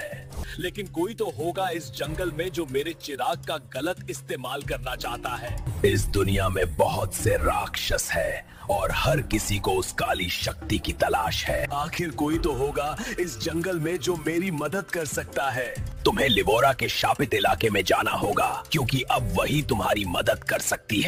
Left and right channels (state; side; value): identical; both; correlation 1.00